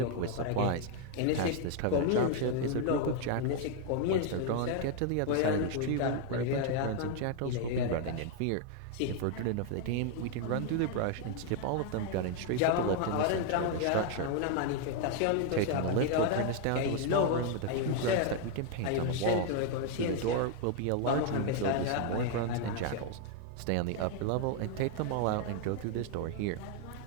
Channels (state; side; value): different; both; correlation 0.00